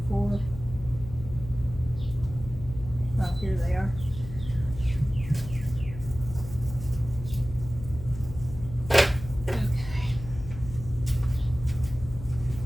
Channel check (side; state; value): left; noise; hum, 11 dB below the sound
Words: for, oh, here they are.